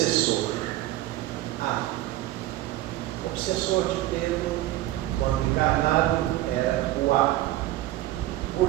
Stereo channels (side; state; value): left; quieter; 15.6 dB